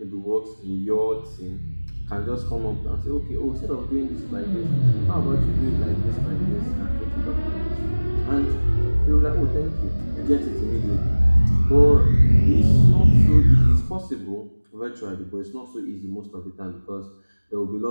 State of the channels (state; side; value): inverted; both; correlation -1.00